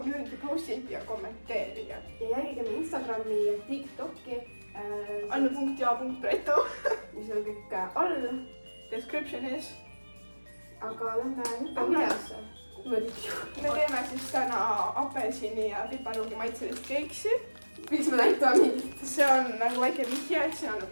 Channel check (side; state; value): both; inverted; correlation -1.00